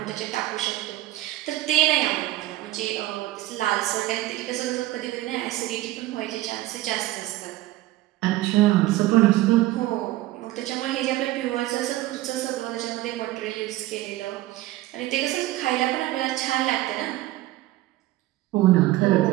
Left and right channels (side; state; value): left; quieter; 16.5 dB